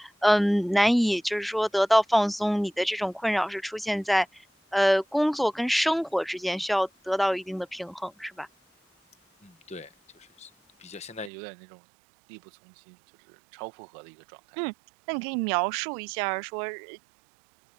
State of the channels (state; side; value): drops out; left; at 11.3 s